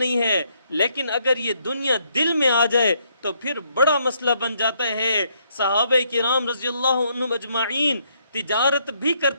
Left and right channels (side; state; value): both; inverted; correlation -0.72